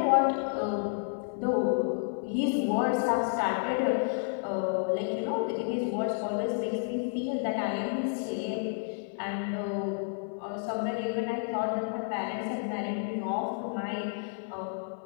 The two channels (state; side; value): silent; right; 56 dB below the other